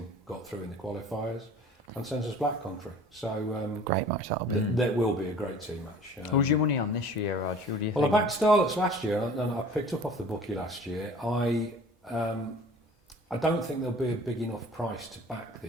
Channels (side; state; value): both; normal; correlation 0.46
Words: got through in the qualifiers. and Census Black Country. So Great match that'll be. There will be a great team match. Who's your money on this year, Rog? Who do you Well, I think? backed Starlets last year, and I picked up off the bookie last year. I don't think there'll be a big enough price to back